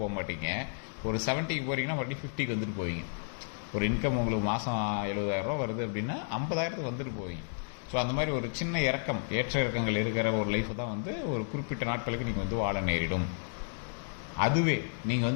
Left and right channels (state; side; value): silent; right; digital silence